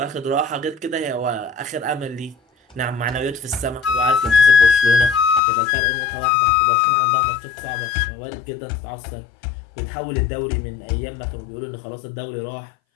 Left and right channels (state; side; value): drops out; right; at 5.4 s